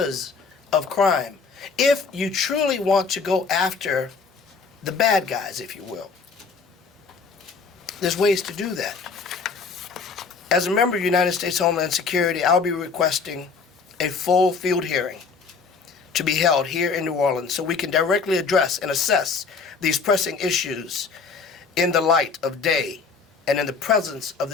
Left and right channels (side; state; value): right; quieter; 5.0 dB